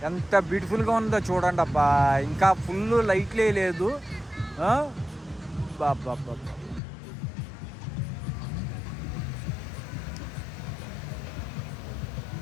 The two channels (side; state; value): right; drops out; at 6.8 s